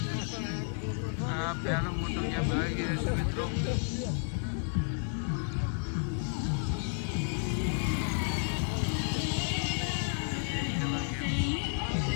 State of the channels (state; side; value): silent; right; 57 dB below the other